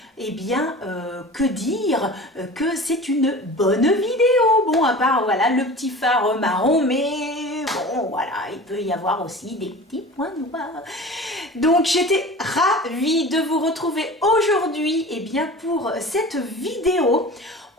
Que dire que c'est une bonne vidéo. Bon, à part voilà le petit phare marron, mais bon voilà, il peut y avoir aussi des petits points noirs. Donc j'étais ravie de vous retrouver aujourd'hui pour cette vidéo.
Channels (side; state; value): both; normal; correlation 0.37